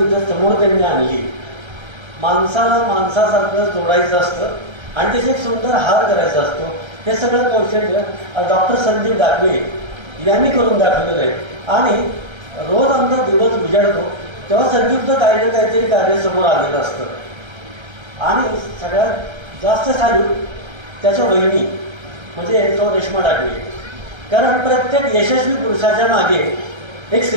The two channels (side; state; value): left; late; 1.3 ms